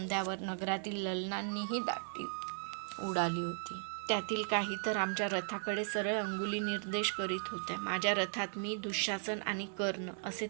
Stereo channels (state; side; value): silent; left; 53 dB below the other